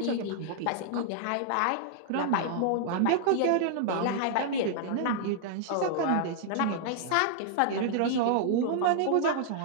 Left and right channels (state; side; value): different; both; correlation -0.01